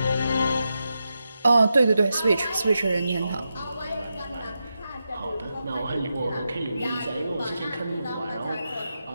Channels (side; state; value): both; inverted; correlation -0.88